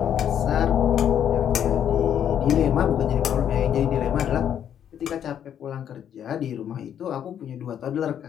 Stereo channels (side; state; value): right; quieter; 9.4 dB